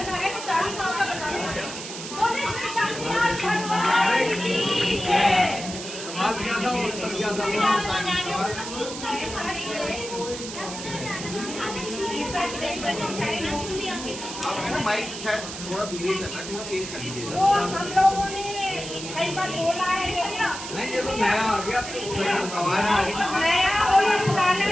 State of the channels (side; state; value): right; noise; hiss, 9 dB below the sound